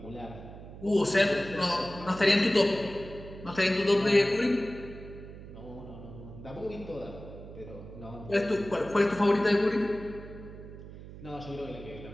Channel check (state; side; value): noise; right; hum, 14 dB below the sound